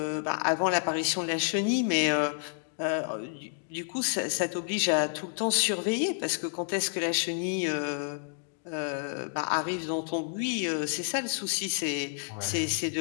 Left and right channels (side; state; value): right; silent; digital silence